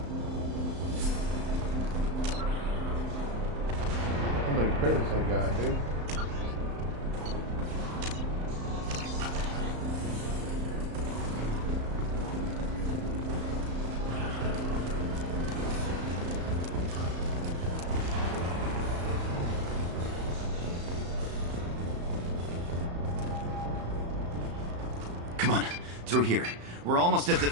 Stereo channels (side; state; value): left; late; 35 ms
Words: How many credits I got, dude? Come on, through here. We're almost at the...